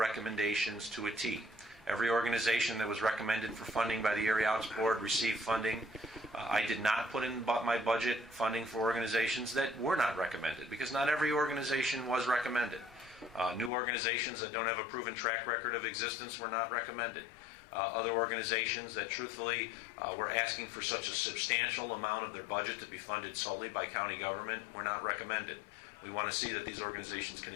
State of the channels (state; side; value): drops out; right; at 13.7 s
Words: to a T. Every organization that was recommended for funding by the Erie Arts Board received funding. I did not put in my budget funding for organizations that were not recommended, because not every organization was recommended. New organizations that don't have a proven track record of existence were not recommended. Other organizations that truthfully were asking for such a substantial amount of their budget to be funded solely by county government were not recommended. We want to see that these organizations can